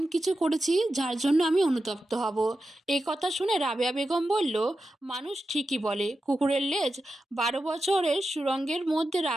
কিছু করেছি যার জন্য আমি অনুতপ্ত হব। এই কথা শুনে রাবেয়া বেগম বলল, মানুষ ঠিকই বলে কুকুরের লেজ 12 বছরের সুরঙ্গের মধ্যে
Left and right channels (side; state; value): both; normal; correlation 0.90